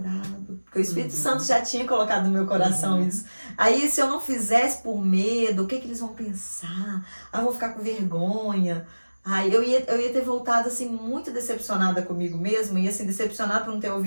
porque o Espírito Santo já tinha colocado no meu coração isso. Aí se eu não fizesse por medo, o que eles vão pensar? Eu vou ficar com vergonha. Aí eu ia ter voltado assim muito decepcionada comigo mesma, e assim, decepcionada por não ter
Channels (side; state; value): both; inverted; correlation -1.00